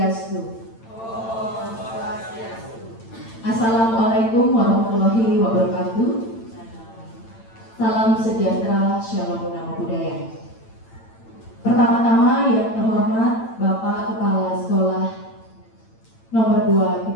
Assalamualaikum warahmatullahi wabarakatuh. Salam sejahtera, shalom namo buddhaya. Pertama-tama yang terhormat Bapak Kepala Sekolah nomor 2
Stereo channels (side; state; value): right; late; 8.9 ms